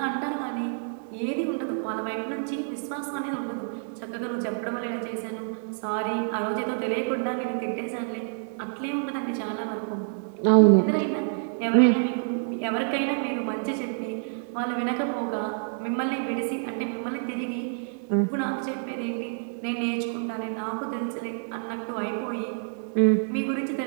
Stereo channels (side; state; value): left; silent; digital silence